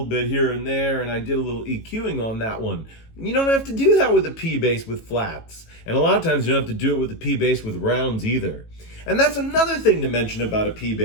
bit here and there, and I did a little EQing on that one. You don't have to do that with a P bass with flats, and a lot of times you don't have to do it with a P bass with rounds either. And that's another thing to mention about a P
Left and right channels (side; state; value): right; late; 18 ms